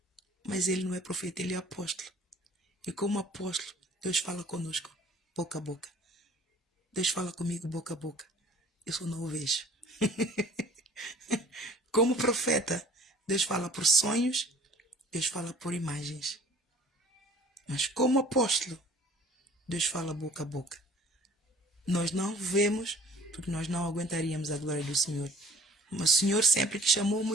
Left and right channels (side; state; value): both; normal; correlation 0.50